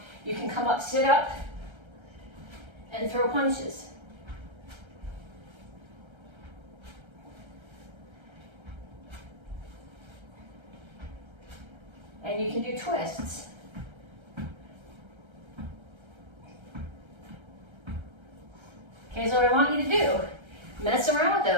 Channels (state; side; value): late; left; 1.3 ms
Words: You can come up, sit up, and throw punches. And you can do twists. Okay, so what I want you to do, mess around with